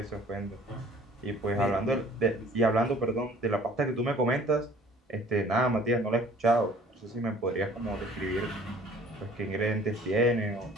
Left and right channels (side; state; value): both; normal; correlation 0.52